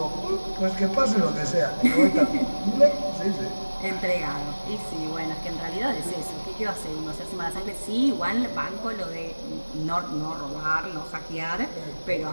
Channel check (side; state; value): both; inverted; correlation -1.00